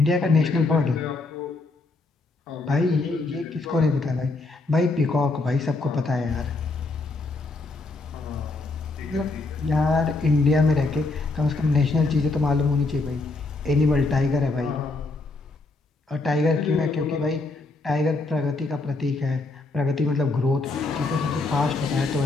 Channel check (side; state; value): right; quieter; 3.4 dB